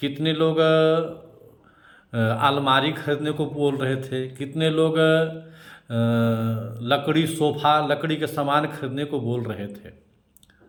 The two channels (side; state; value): both; identical; correlation 1.00